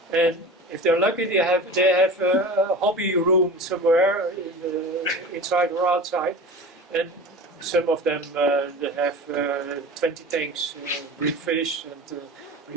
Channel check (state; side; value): normal; both; correlation 0.34